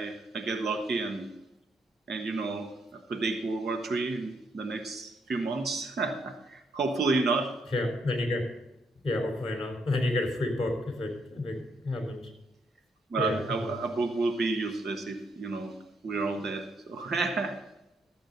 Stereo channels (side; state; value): both; normal; correlation 0.75